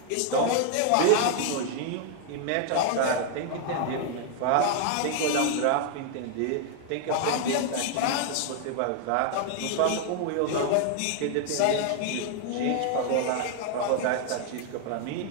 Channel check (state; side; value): different; both; correlation 0.00